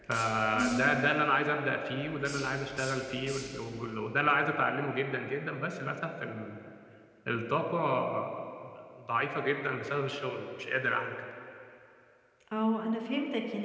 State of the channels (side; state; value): both; identical; correlation 1.00